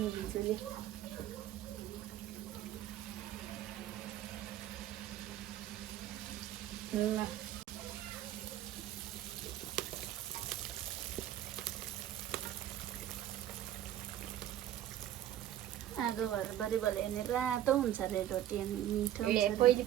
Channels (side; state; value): left; quieter; 12.2 dB